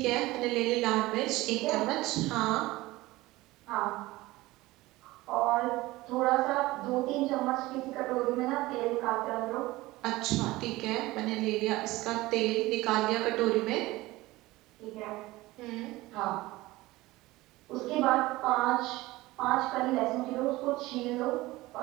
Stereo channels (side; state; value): left; quieter; 19.2 dB